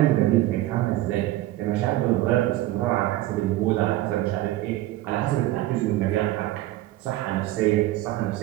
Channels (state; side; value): quieter; left; 16.0 dB